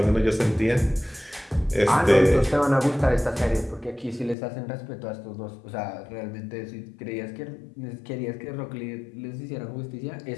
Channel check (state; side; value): drops out; right; at 4.4 s